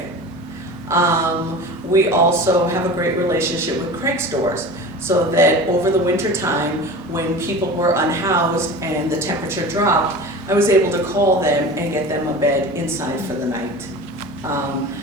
We also have a great relationship with Craig's stores, so that over the winter time, when people were unhoused and the temperature dropped, I was able to call them and get them a bed inside for the night.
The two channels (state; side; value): normal; both; correlation 0.35